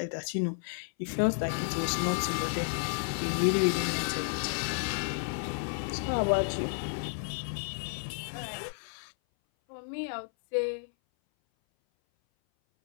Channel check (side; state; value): right; silent; 57 dB below the other